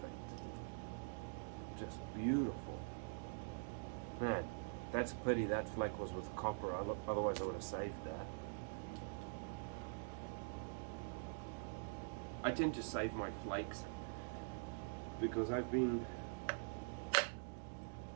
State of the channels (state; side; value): silent; left; digital silence